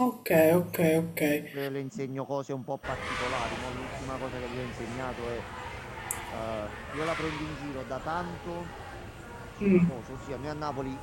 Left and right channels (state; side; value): identical; both; correlation 1.00